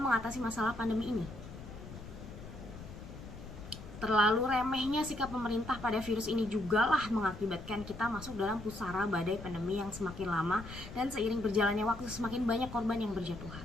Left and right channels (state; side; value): noise; left; rumble, 13 dB below the sound